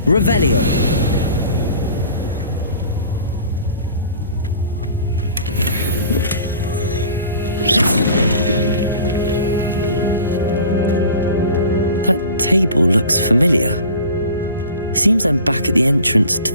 Revelio. That table looks familiar. Seems I'm back at the entrance to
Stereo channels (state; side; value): inverted; both; correlation -0.42